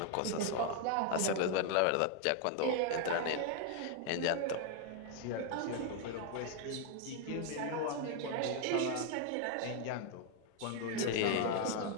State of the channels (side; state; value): both; different; correlation 0.00